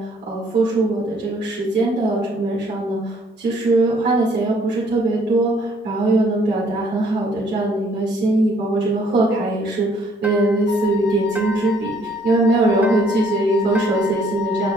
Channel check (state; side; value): normal; both; correlation 0.63